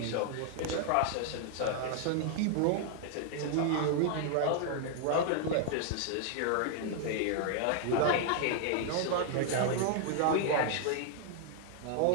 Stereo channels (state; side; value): different; both; correlation 0.00